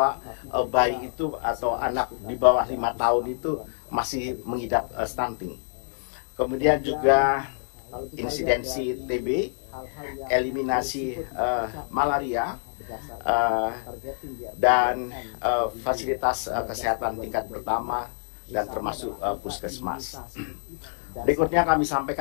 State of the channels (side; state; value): right; silent; digital silence